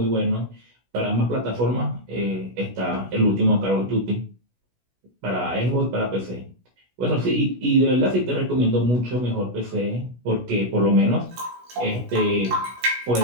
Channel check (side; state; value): left; late; 16 ms